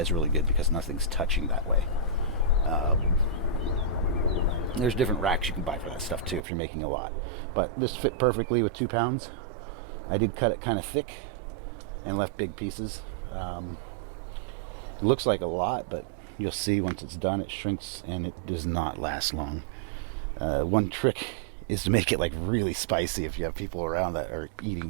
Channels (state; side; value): drops out; left; at 6.4 s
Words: really good because nothing's touching that way. There's different racks you can buy for that stuff too if you're making a lot, but this fit perfectly with 2 pounds. I did cut it kind of thick and left big pieces. It looks like a lot, but you'll see once it's done it shrinks and it does not last long. One trick is to make it like really spicy if you have people around that are